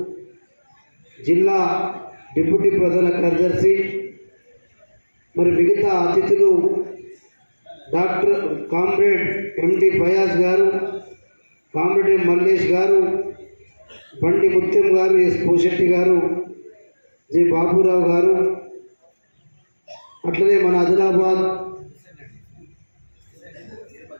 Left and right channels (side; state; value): both; inverted; correlation -1.00